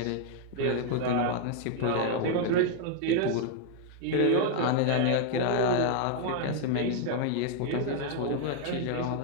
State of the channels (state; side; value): different; both; correlation 0.00